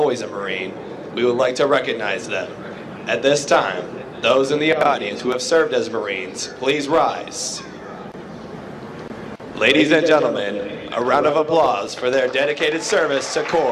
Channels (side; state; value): both; identical; correlation 1.00